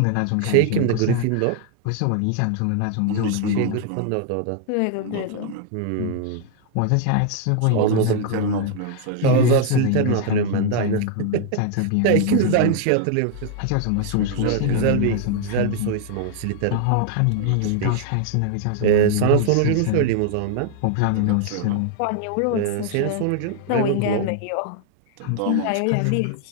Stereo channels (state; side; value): different; both; correlation 0.00